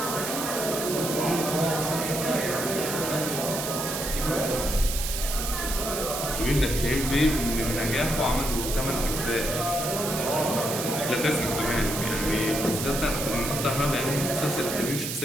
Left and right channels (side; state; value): right; noise; hiss, 4 dB below the sound